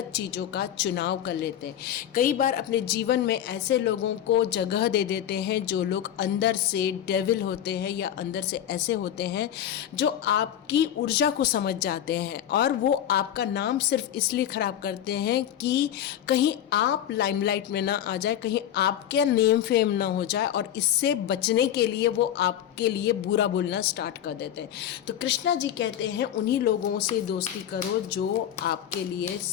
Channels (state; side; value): quieter; right; 10.5 dB